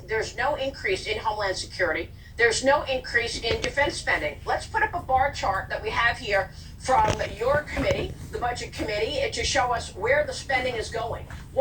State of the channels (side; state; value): both; identical; correlation 1.00